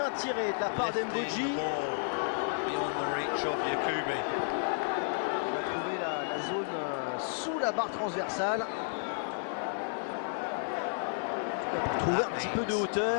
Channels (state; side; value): silent; right; 56 dB below the other